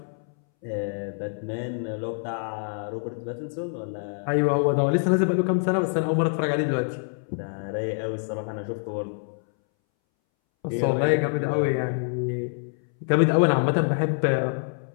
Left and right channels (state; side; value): silent; right; 61 dB below the other